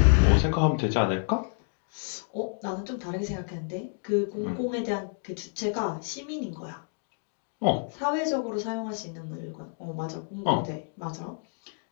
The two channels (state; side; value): silent; right; 59 dB below the other